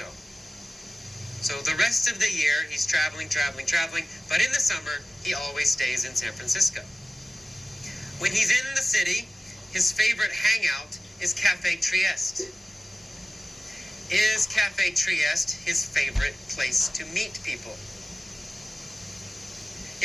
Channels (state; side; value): normal; both; correlation 0.96